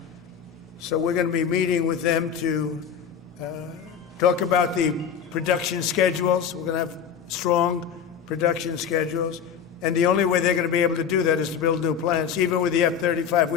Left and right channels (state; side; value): quieter; right; 7.5 dB